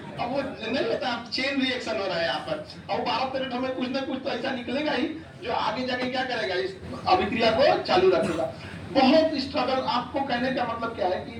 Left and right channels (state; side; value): identical; both; correlation 1.00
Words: अब वो नहीं होता, चेन रिएक्शन हो रहा है यहाँ पर। अब 12-13 में कुछ ना कुछ तो ऐसा निकलेगा ही जो आगे जाके क्या करेगा, इस अभिक्रिया को चालू रखेगा। बहुत स्ट्रगल। आपको कहने का मतलब क्या है कि